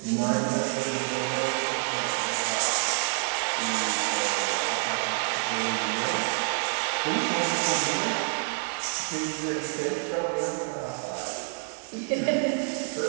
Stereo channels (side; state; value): left; silent; 60 dB below the other